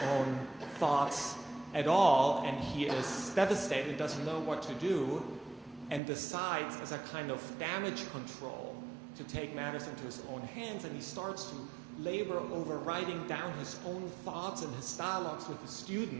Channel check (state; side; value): drops out; left; at 6.0 s